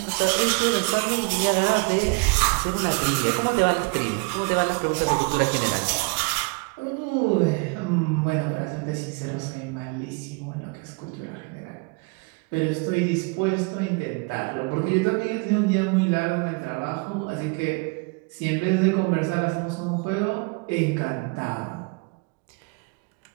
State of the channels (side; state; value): left; quieter; 30.5 dB